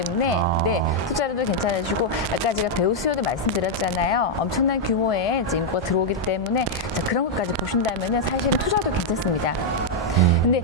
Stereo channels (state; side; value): normal; both; correlation -0.02